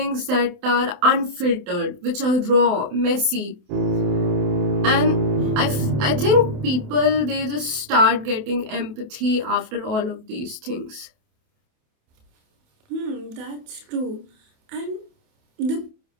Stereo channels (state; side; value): late; left; 28 ms